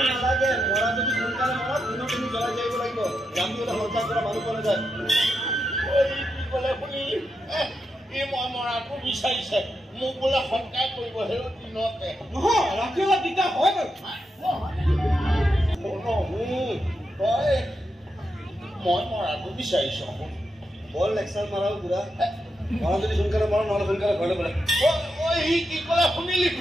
নালাগে মৰা যদি সোনকালে মৰা পুনৰ তুমি জ্বলাই যাব লাগিব জামিবলৈ সঞ্চাৰ কৰা মানুহ পোৱা নাযায় কি ক'লে শুনি এই মই মৰাটো বিচাৰিছে মোক বোলে সৎকাৰ কৰিব সেই দিনতে নহয় ৰাতিপুৱা দিগদাৰ হয় তই মই মৰাটো বিচাৰিছ বৰ লেকচাৰ মাৰাও বুঢ়া মৰা যদি সোনকালে মৰা নহ'লে সোনকালে ঘৰলৈ বোলে সি কি ক'লে শুনিলি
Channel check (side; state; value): both; normal; correlation 0.85